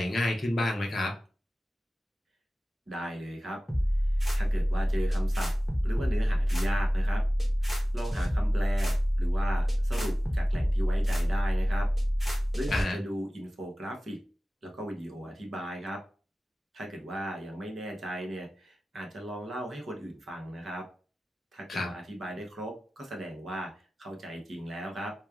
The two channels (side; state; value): both; normal; correlation 0.96